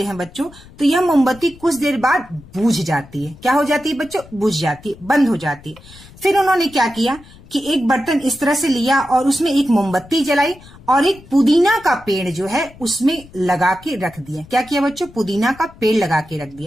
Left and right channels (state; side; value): noise; left; rumble, 22 dB below the sound